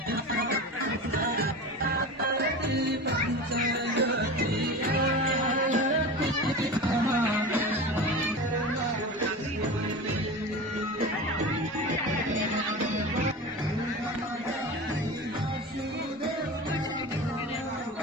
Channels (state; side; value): normal; both; correlation 0.30